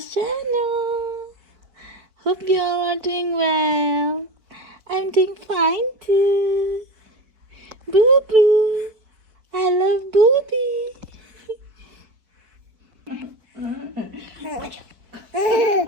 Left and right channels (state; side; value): late; left; 4.6 ms